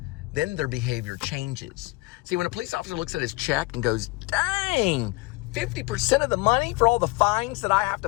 then their behavior changes. See, when a police officer looks at his check and goes, dang, 50% of the money for all the fines that I have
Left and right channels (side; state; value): right; quieter; 22.8 dB